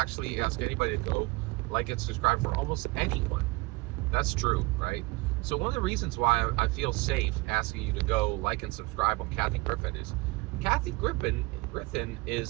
ask anybody to go like and subscribe for almost anyone. That's true, right? So one of the reasons why I feel safe asking you to go like and subscribe on Kathy Griffin is Kathy Griffin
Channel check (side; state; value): left; quieter; 23.4 dB